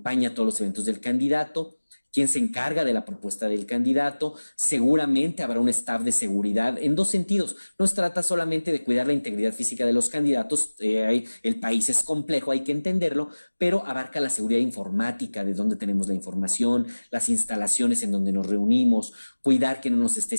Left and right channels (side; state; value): both; inverted; correlation -1.00